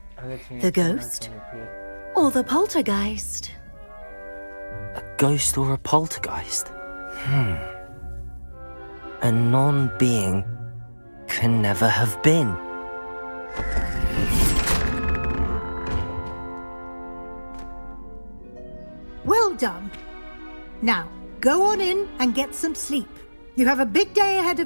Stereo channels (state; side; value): inverted; both; correlation -1.00